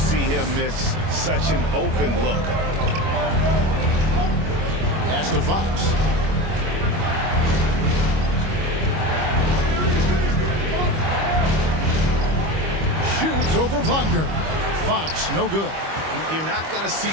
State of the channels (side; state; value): left; late; 25 ms